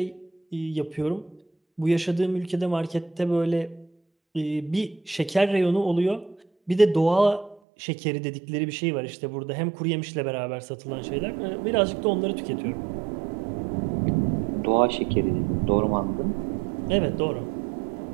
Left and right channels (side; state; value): left; drops out; at 7.6 s